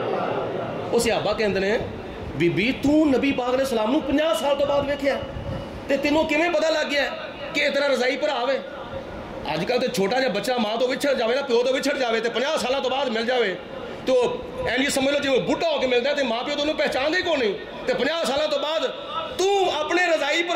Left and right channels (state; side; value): identical; both; correlation 1.00